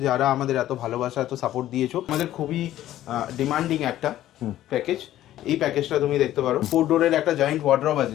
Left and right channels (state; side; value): quieter; right; 13.3 dB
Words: যারা আমাদের এত ভালোবাসা এত সাপোর্ট দিয়েছো। আমাদের খুবই ডিমান্ডিং একটা প্যাকেজ। এই প্যাকেজটা তুমি দেখতে পারো, 4 ডোরের একটা জয়েন্ট ওয়ার্ড্রব আছে